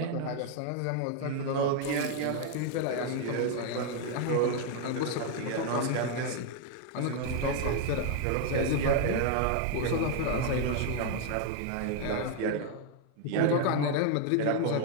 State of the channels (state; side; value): different; both; correlation 0.00